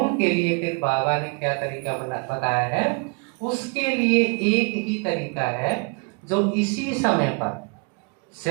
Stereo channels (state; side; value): quieter; left; 34.7 dB